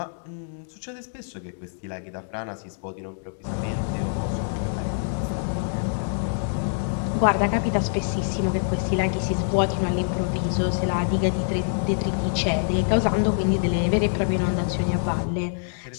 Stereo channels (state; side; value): silent; right; 62 dB below the other